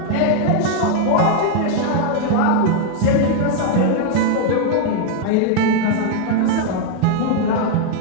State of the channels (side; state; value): both; different; correlation 0.00